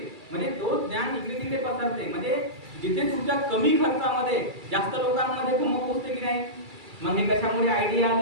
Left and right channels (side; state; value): left; late; 2.3 ms